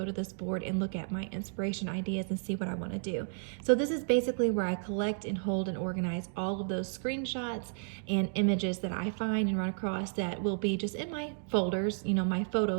to this board and look at my inspiration ideas and see what I want to do. So this is basically where I collect and hold and organize all of those screenshots and images that I find and run across that will be just in my folders, you know, my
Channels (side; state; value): left; silent; 56 dB below the other